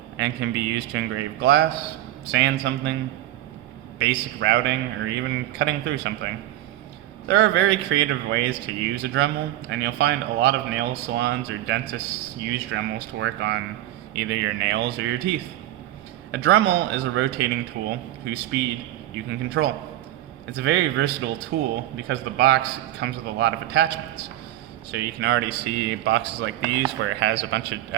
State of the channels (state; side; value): quieter; left; 14.2 dB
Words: and can be used to engrave glass, sand something, basic routing, or even cutting through something. There are very creative ways to use a Dremel, and you'll find a lot of nail salons or dentists use Dremels to work on either your nails or your teeth. A Dremel is a rotating tool whose speed you can control. It's a very versatile tool because the box comes with a lot of attachments. So you can already see boxes like these where it has a bunch of